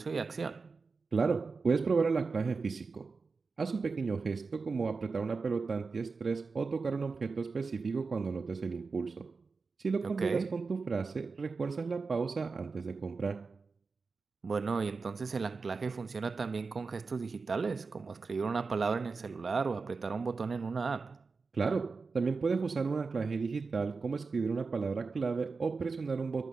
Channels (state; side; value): quieter; left; 4.5 dB